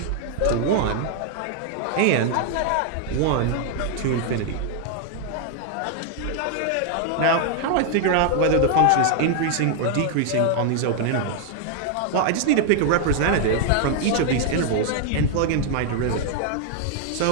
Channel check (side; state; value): both; different; correlation 0.00